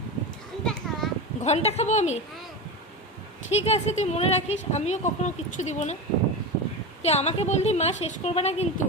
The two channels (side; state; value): both; normal; correlation 0.22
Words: ঘন্টা খাবো আমি? ঠিক আছে তুই মনে রাখিস আমিও কখনো কিচ্ছু দিব না। তুই আমাকে বললি মা শেষ করবে না কিন্তু,